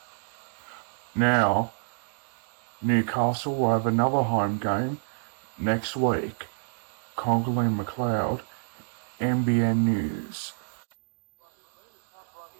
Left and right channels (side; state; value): left; silent; digital silence